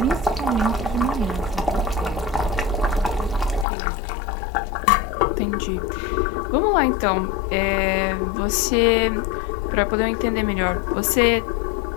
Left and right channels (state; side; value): drops out; right; at 3.7 s